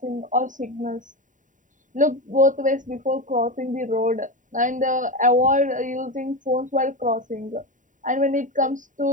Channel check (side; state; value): left; late; 0.37 ms